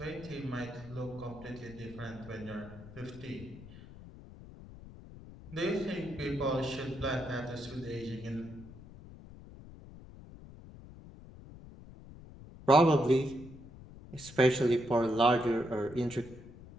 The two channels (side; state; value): left; noise; rumble, 17 dB below the sound